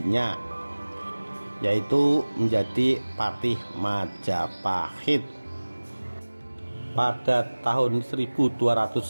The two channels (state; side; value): inverted; both; correlation -1.00